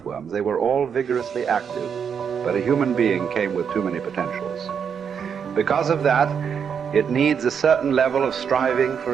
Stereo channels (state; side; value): quieter; left; 7.2 dB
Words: They were all vigorously active, but a human being came with too many potentials. Because of that, it needs a certain level of striving